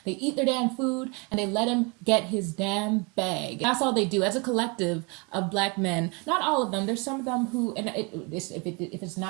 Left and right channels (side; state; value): left; quieter; 30.0 dB